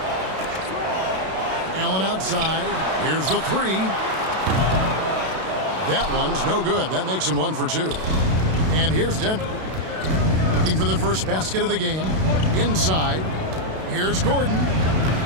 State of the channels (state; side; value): late; left; 32 ms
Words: Allen outside. Here's the 3. That one's no good. That makes him 1 for 2. And here's Denver. Looking for the first basket of the game. Inside. Here's Gordon.